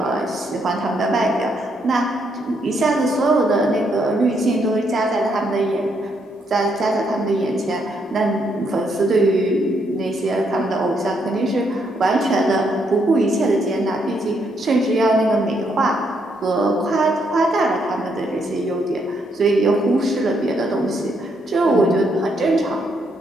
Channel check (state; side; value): normal; both; correlation 0.75